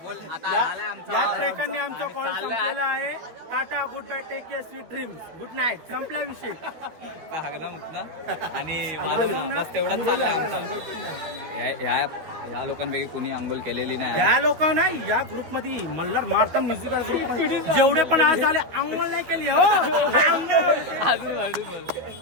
आता आलाय आमचा या ट्रेकरने आमचा कॉल संपलेला आहे. Tata, good bye, take care, sweet dream, good night. संपला विषय. हागला मुकला आणि बस तेवढाच चालला. या लोकांपैकी कोणी आंघोळ केलेली नाही. या लोकांना या ग्रुप मध्ये मल्हार मारता म्युझिकल ग्रुप मध्ये जेवढे पण आज आले आंघोळ नाही केली हो.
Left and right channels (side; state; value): left; late; 13 ms